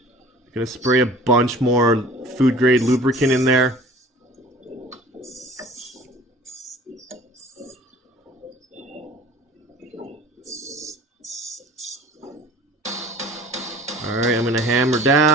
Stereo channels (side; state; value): both; normal; correlation 0.46